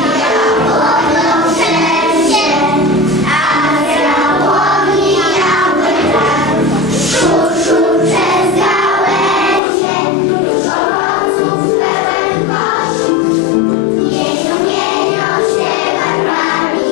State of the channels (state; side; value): drops out; right; at 9.6 s